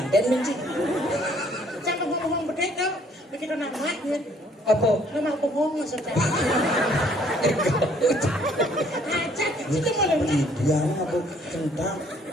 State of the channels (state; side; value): normal; both; correlation 0.62